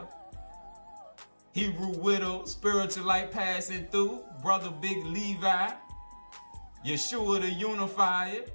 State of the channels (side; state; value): both; inverted; correlation -1.00